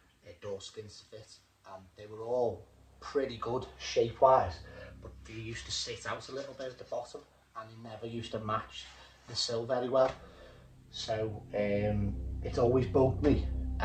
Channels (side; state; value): both; identical; correlation 1.00